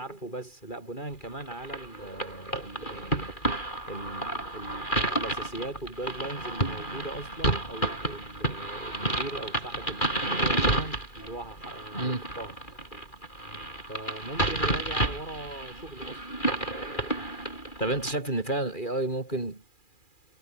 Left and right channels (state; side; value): late; right; 2.4 ms